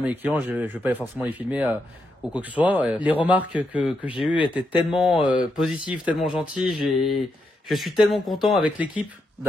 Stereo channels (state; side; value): normal; both; correlation 0.82